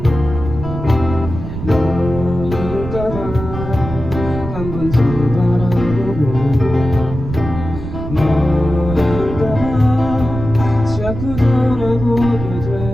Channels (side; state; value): right; noise; rumble, 8 dB below the sound